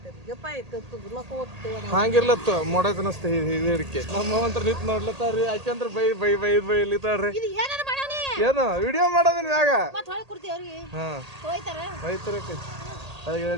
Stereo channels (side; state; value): left; late; 1.8 ms